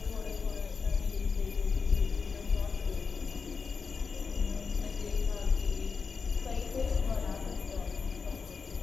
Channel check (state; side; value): quieter; right; 5.2 dB